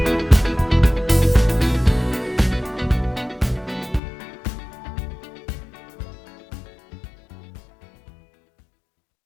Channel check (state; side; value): drops out; right; at 4.0 s